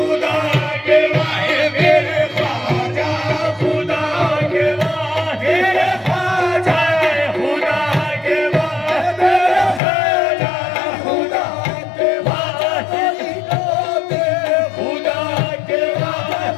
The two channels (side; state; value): right; drops out; at 9.8 s